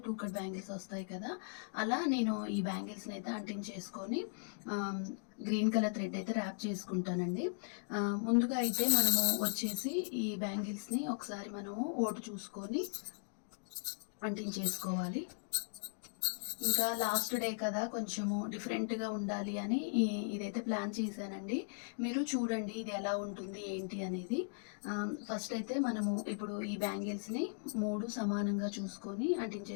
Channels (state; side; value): silent; right; digital silence